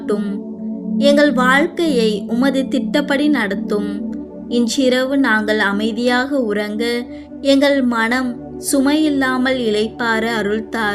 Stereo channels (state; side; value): identical; both; correlation 1.00